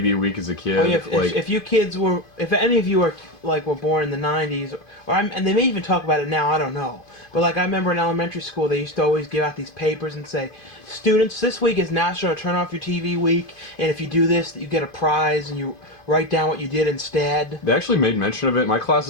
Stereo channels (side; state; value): right; late; 2.5 ms